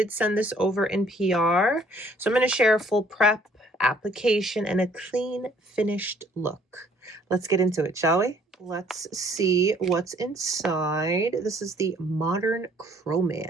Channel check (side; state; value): both; normal; correlation 0.60